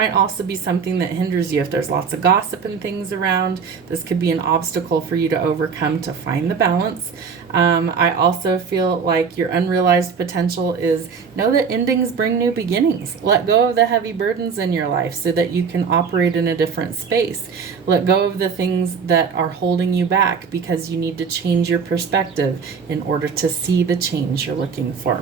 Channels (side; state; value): left; quieter; 6.0 dB